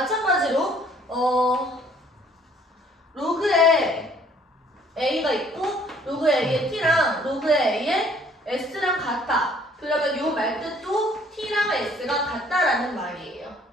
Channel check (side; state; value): both; normal; correlation 0.59